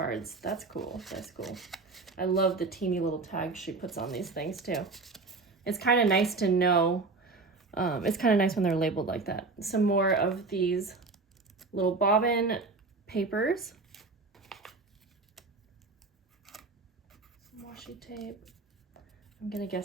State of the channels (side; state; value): left; quieter; 3.8 dB